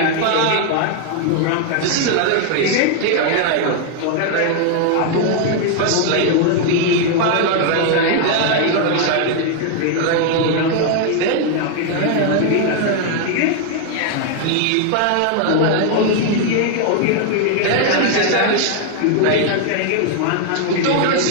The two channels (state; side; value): different; both; correlation 0.00